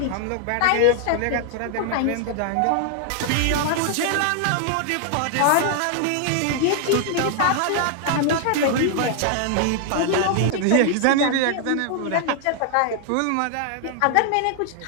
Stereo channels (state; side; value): different; both; correlation 0.00